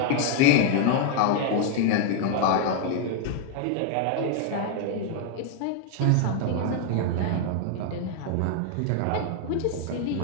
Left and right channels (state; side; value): different; both; correlation 0.00